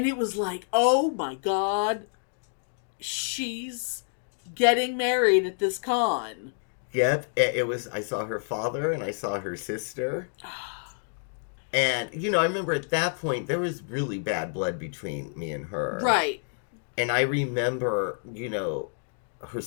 it was like, oh my God, she's getting married at this con. Yep. It was, I saw her father, and I saw her sister. And, you know, I remember at that point, there was really bad blood between me and her. Right. And I remember, you know... her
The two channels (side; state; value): right; silent; digital silence